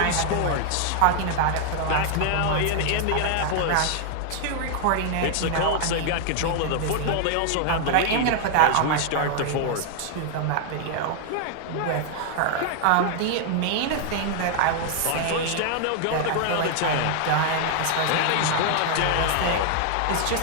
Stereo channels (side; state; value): both; different; correlation 0.00